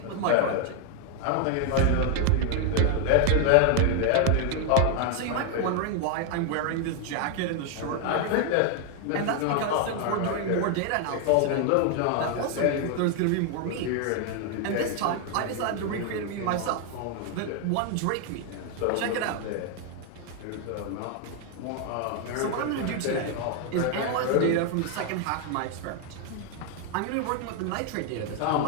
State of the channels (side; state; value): both; different; correlation 0.01